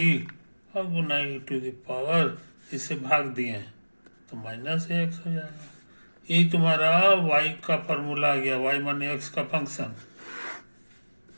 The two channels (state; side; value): inverted; both; correlation -1.00